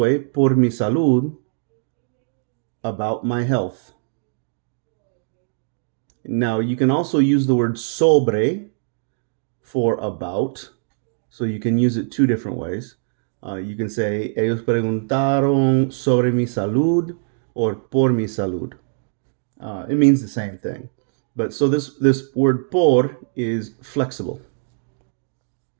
por mi salud, about my health. Now, you can also use the word sobre for about, so you can use it two different ways. You can say, ellos preguntaron sobre mi salud or por mi salud. It means the same thing. But so this word por is flexible.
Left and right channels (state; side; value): silent; left; digital silence